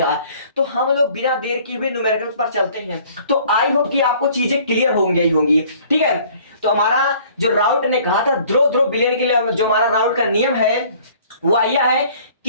तो हम लोग बिना देर किए हुए न्यूमेरिकल पर चलते हैं। तो आई होप कि आपको चीजें क्लियर होंगी ही होंगी। ठीक है, तो हमारा जो राउट ने कहा था ध्रुव ध्रुव बिलियन के लिए, जो हमारा राउट का नियम है वो यह है,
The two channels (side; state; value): both; inverted; correlation -0.54